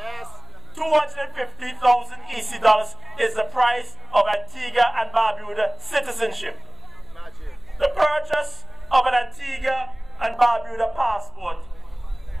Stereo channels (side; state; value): left; noise; hum, 22 dB below the sound